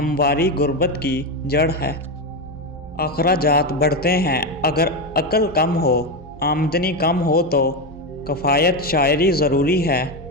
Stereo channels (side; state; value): both; normal; correlation 0.12